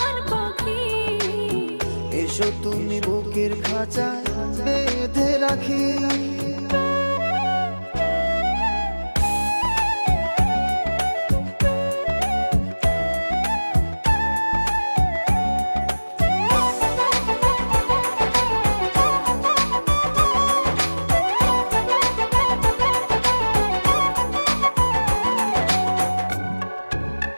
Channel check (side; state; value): both; inverted; correlation -1.00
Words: পাখি, এসো তুমি বুকের খাঁচায় বেঁধে রাখি।